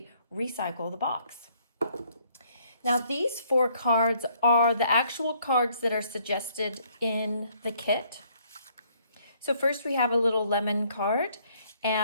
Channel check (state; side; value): inverted; both; correlation -0.66